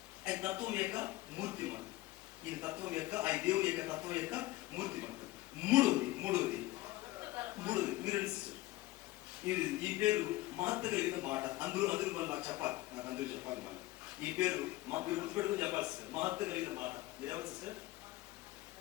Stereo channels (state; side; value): quieter; right; 18.2 dB